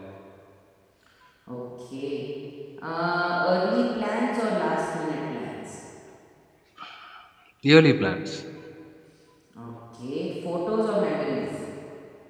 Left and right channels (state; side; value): identical; both; correlation 1.00